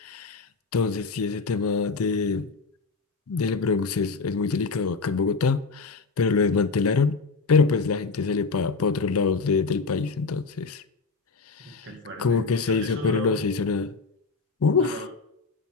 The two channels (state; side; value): quieter; right; 4.3 dB